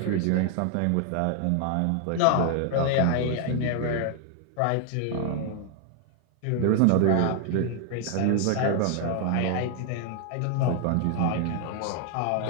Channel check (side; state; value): both; different; correlation 0.00